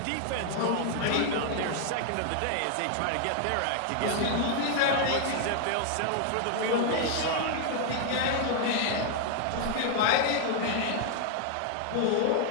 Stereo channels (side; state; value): both; different; correlation 0.00